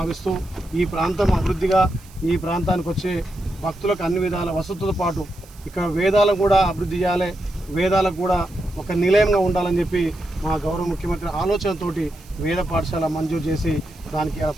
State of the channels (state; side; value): noise; right; hiss, 25 dB below the sound